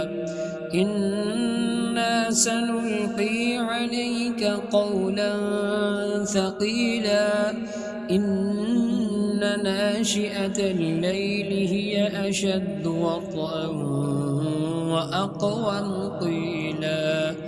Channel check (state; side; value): identical; both; correlation 1.00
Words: إنا سنلقي عليك قولا ثقيلا إن ناشئة الليل هي أشد وطئا وأقوم قيلا